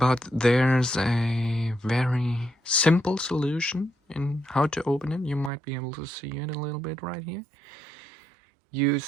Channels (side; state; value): left; drops out; at 5.5 s